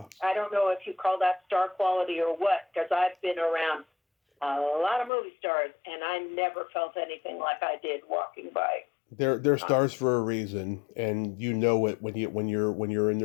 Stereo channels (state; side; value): drops out; right; at 5.1 s